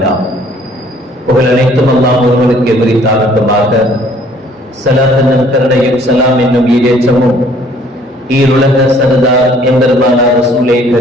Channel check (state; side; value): normal; both; correlation 0.58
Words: புகழ் அனைத்தும் அல்லாஹ் ஒருவனுக்கு எதிரித்தாகட்டுமாக. ஸலாத் என்னும் கருணையும் சலாம் என்னும் ஈடேற்றமும் ஈருலக சர்தார் எம்பெருமானார் ரசூலே